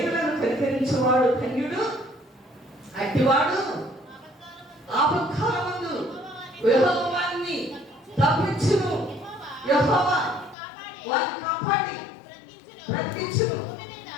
కనికరించేవాడు ధన్యుడు, అట్టివాడు ఆపత్కాలమందు యెహోవాని తప్పించును. యెహోవా వారిని కాపాడి బ్రతికించును.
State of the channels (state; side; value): drops out; right; at 10.6 s